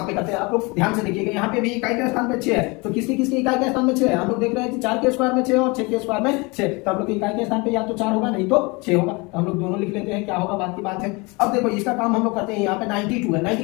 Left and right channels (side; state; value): right; quieter; 27.0 dB